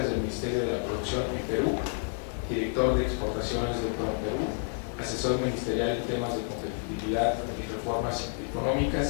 del Ministerio de la Producción en Perú, director de Exportaciones de Perú, asesor ministerial en temas de competitividad y reformas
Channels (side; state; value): right; silent; 56 dB below the other